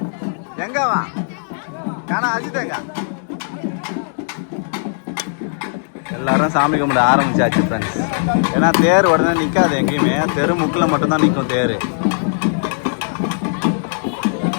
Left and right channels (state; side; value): silent; right; digital silence